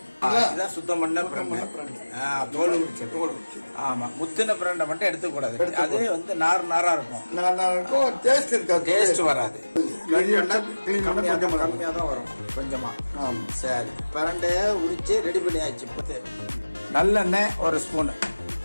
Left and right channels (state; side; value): inverted; both; correlation -1.00